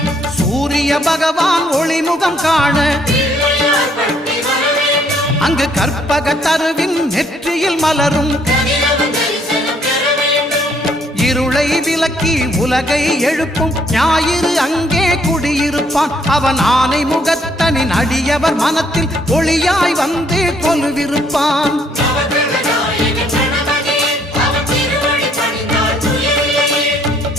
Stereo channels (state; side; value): normal; both; correlation 0.67